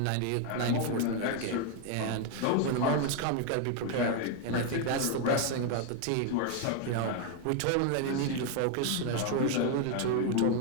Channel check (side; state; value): both; different; correlation 0.01